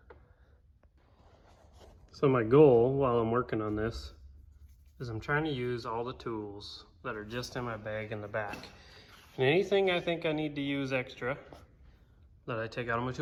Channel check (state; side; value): identical; both; correlation 1.00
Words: So my goal while I'm working on this is I'm trying to use all the tools that are just in my bag in the back. And anything I think I need to use extra that I take out of my